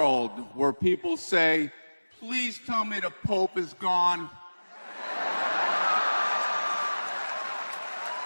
where people say, please tell me the Pope is gone.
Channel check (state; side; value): inverted; both; correlation -1.00